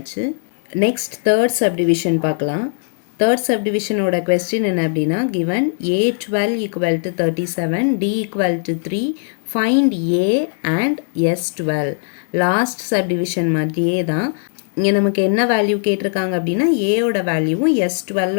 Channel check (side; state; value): right; silent; digital silence